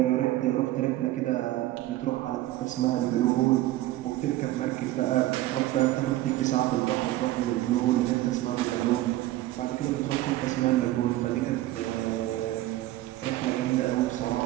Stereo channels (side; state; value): left; quieter; 15.9 dB